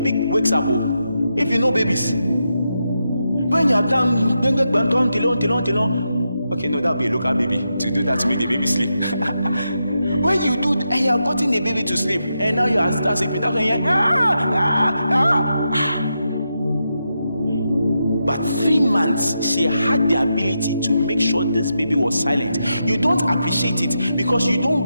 wakes up. If you know babies, when you have done okay, no, that'll be a local baby to do that to make the baby sleep. When you do and you have gotten the baby to sleep and now you are start sleeping, that's when you're But 3 months, she had the ability to make sure this baby was silent. You don't appreciate it because you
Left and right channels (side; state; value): both; inverted; correlation -0.86